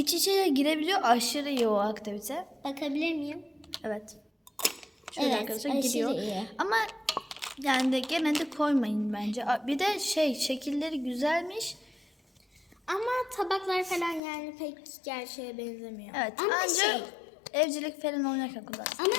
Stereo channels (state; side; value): drops out; right; at 14.2 s